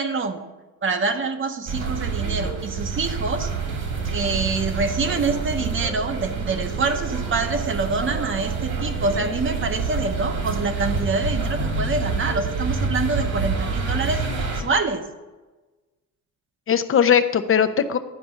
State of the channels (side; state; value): both; normal; correlation 0.12